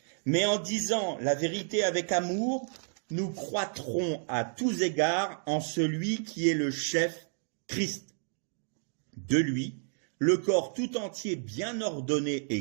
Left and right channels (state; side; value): silent; left; 57 dB below the other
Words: Mais en disant la vérité avec amour, nous croîtrons à tous égards en celui qui est le chef, Christ. De lui, le corps tout entier bien ordonné